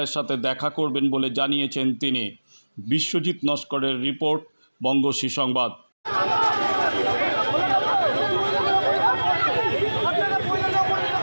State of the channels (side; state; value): both; inverted; correlation -1.00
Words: সাথে দেখা করবেন বলে জানিয়েছেন তিনি। বিশ্বজিৎ নস্করের রিপোর্ট, বঙ্গশ্রী সংবাদ।